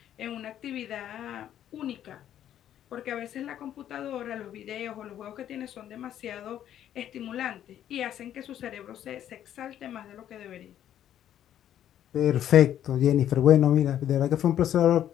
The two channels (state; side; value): quieter; right; 10.9 dB